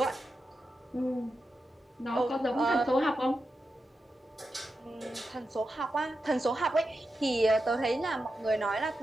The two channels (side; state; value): both; normal; correlation 0.89